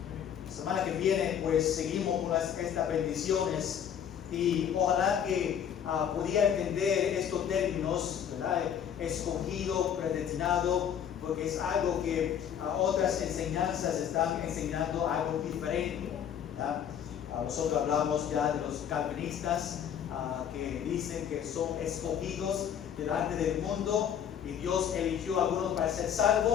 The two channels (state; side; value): quieter; right; 8.8 dB